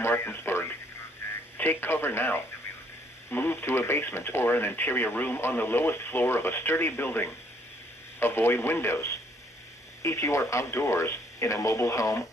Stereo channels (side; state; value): both; normal; correlation 0.65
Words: Take cover now. Move to a basement or an interior room on the lowest floor of a sturdy building. Avoid windows. If you are outdoors, in a mobile home,